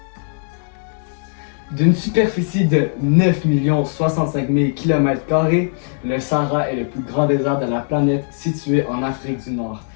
D'une superficie de 9 065 000 km², le Sahara est le plus grand désert de la planète situé en Afrique du Nord.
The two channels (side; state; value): right; silent; digital silence